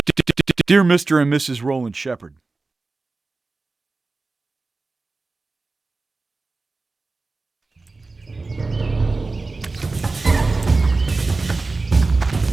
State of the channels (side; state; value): left; quieter; 3.6 dB